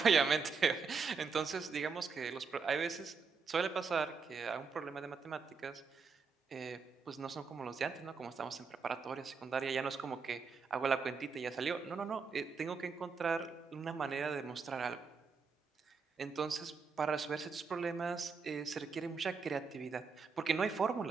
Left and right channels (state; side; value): quieter; left; 5.2 dB